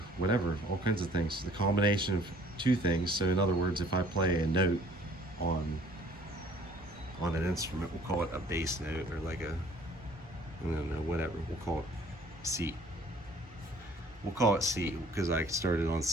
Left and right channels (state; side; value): normal; both; correlation 0.55